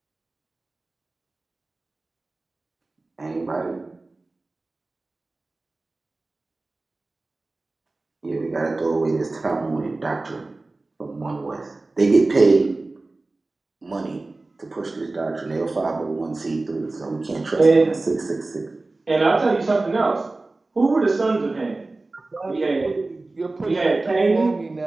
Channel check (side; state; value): left; quieter; 3.2 dB